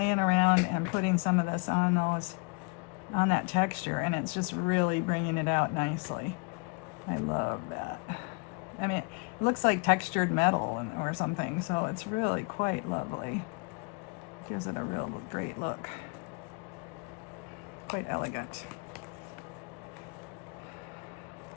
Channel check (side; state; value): right; quieter; 32.3 dB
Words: around and putting some of this on that texture, and it's just really bringing it out nicely. I love that. I mean, it looks like textured metal or something, so it's really quite lovely. Gives it a real great look. Quite elegant.